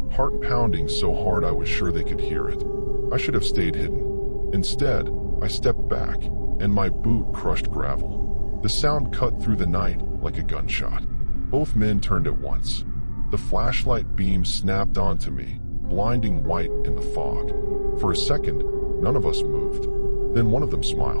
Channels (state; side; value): inverted; both; correlation -1.00